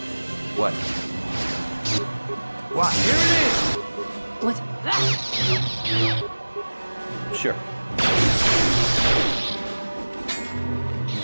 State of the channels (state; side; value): inverted; both; correlation -1.00